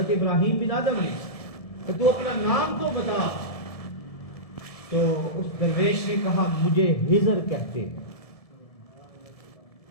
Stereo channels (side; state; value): right; late; 1.7 ms